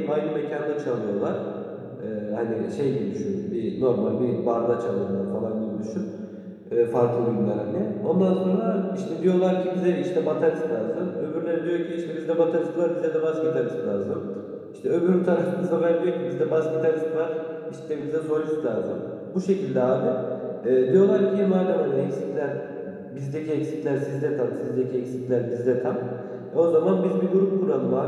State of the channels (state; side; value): identical; both; correlation 1.00